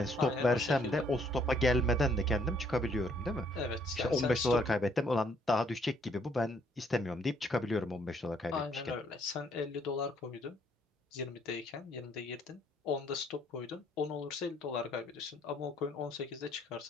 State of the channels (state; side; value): normal; both; correlation 0.66